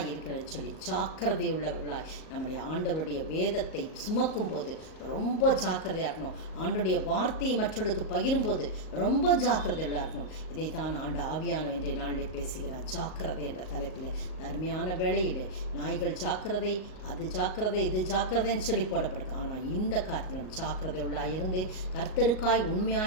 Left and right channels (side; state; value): right; late; 38 ms